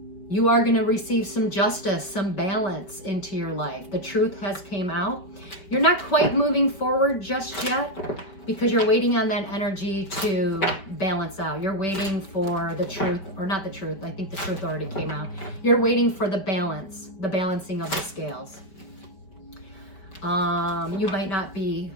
You are going to receive some justice, some balance into your life. The truth has came out. You're not quite moving forward just yet because you're waiting on that energy to balance out. You're waiting for the truth, or not the truth. I think the truth already came out. You're waiting for the balance, the balancing of the scales. You might not be,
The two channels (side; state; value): right; late; 5.2 ms